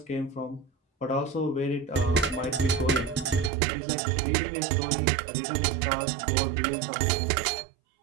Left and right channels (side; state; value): left; drops out; at 3.5 s